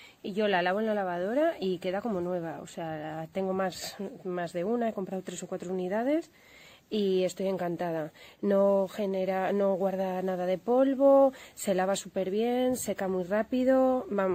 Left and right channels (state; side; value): identical; both; correlation 1.00